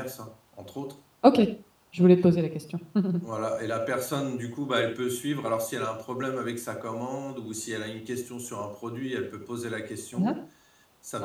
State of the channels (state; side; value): identical; both; correlation 1.00